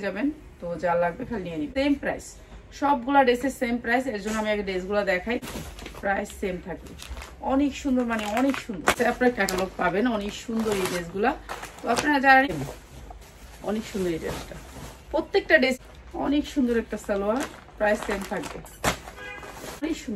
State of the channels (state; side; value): identical; both; correlation 1.00